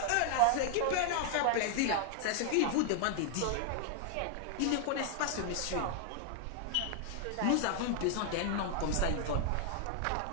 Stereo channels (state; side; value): different; both; correlation 0.00